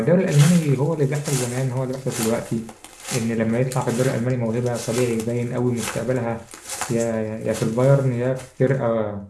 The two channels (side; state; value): both; identical; correlation 1.00